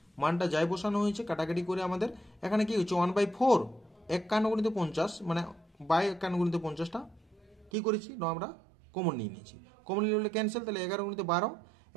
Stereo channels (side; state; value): left; drops out; at 7.7 s